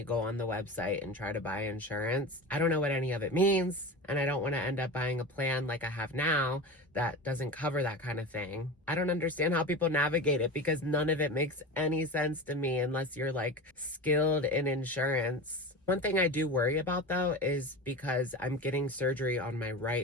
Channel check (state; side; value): normal; both; correlation 0.28